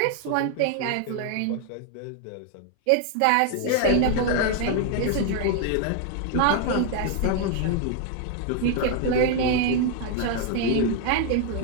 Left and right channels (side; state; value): both; different; correlation 0.00